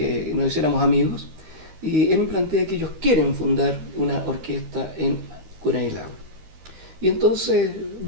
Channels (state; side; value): late; left; 13 ms